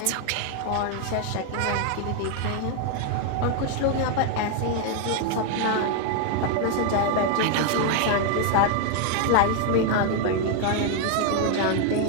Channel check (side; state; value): both; different; correlation 0.00